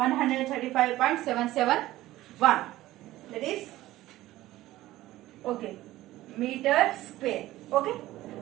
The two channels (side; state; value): left; quieter; 16.1 dB